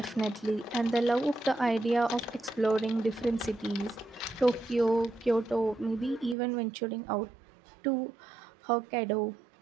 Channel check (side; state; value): left; drops out; at 6.4 s